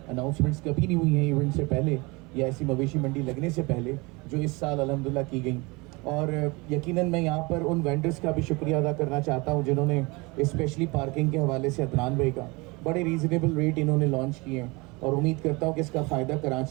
अनाउंसमेंट्स कभी नहीं हुई हैं इवेंट से पहले या ऐसी मवेशी मंडी लगने से पहले, जो इस साल अल्हम्दुलिल्लाह की गई। और यकीनन मैं यहाँ पर उन वेंडर्स का भी शुक्रिया अदा करना चाहता हूँ जिन्होंने स्पेशली पार्किंग के हवाले से अदनान भाई का बड़े रीज़नेबल रेट इन्होंने लॉन्च किए हैं और उम्मीद करता हूँ कि इसका फ़ायदा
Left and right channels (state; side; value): quieter; left; 25.9 dB